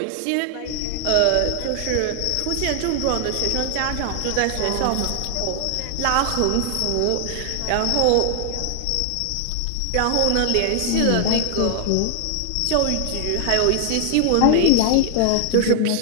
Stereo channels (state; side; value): different; both; correlation 0.00